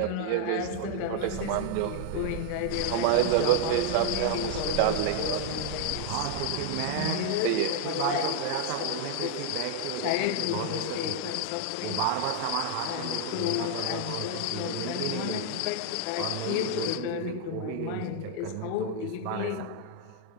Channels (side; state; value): both; different; correlation -0.01